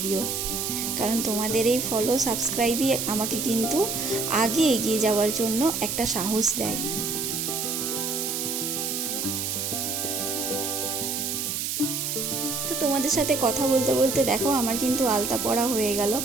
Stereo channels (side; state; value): right; noise; hiss, 2 dB below the sound